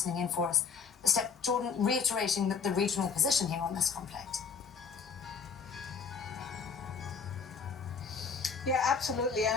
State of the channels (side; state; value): right; quieter; 5.9 dB